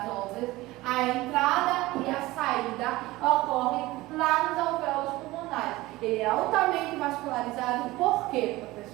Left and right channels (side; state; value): left; quieter; 19.1 dB